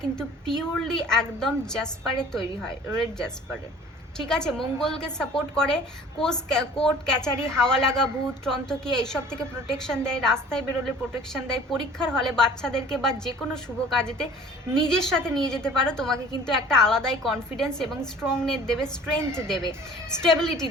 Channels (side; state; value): both; normal; correlation 0.48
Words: কিন্তু পিওরলি একদম জাসপারে তৈরি হয়, রেড জাসপারে। ঠিক আছে, মঙ্গলকে সাপোর্ট করে, কোর্ট ক্যাচারি, হাওয়া লাগা, ভূত টন্তকিয়া এইসব থেকে প্রোটেকশন দেয়, রাস্তায় বেরোলে প্রোটেকশন দেয়, পরীক্ষার হলে বাচ্চাদেরকে বা যে কোনো শুভ কাজেতে নিজের সাথে নিয়ে যেতে পারো। তোমাকে কিন্তু একটা আলাদাই কনফিডেন্স এবং স্ট্রংনেস দেবে, স্ট্রেংথ দেবে, স্টেবিলিটি